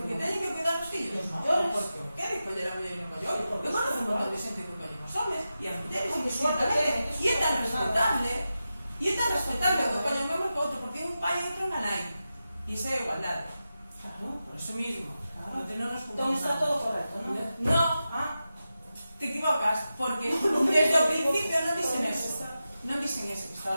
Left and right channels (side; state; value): both; inverted; correlation -0.92